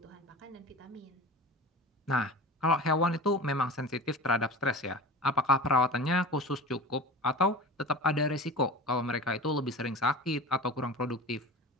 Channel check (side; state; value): both; normal; correlation 0.34